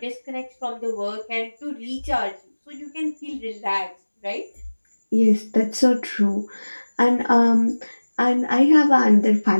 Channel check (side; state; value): both; inverted; correlation -1.00